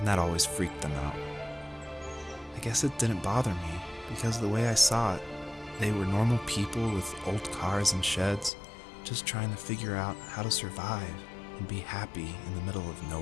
that always freaked them out. I guess it didn't bother me, because the way I saw it, they were normal people with old cars and sheds, just trying to figure out how to survive and be happy in the middle of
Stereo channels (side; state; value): right; drops out; at 8.5 s